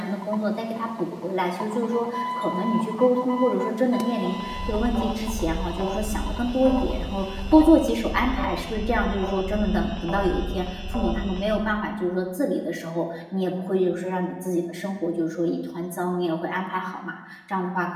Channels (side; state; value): both; identical; correlation 1.00